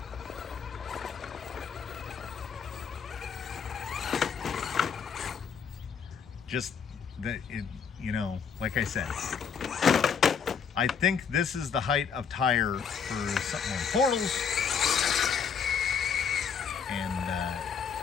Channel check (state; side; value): quieter; right; 6.7 dB